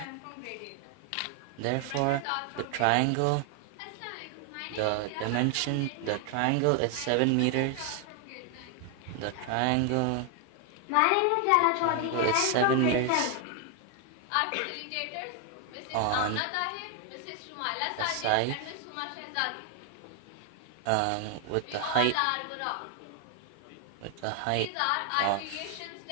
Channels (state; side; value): different; both; correlation 0.00